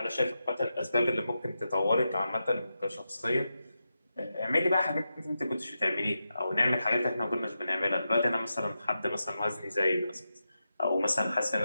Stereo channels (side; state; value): both; inverted; correlation -0.89